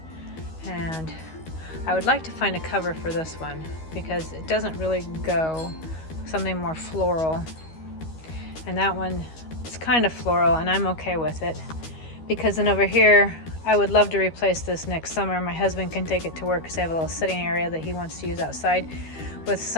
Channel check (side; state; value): right; late; 13 ms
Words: And I would like to find a cover for this one because it doesn't really go. Something more floral. And that one is kind of floral and I'm okay with it. Because then over here, I would love to replace this next summer. My husband can take it to work because I have a little sitting area that he wants to use outside with